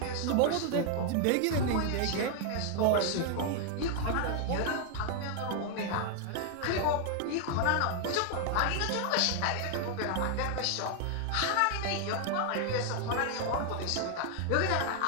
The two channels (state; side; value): different; both; correlation 0.00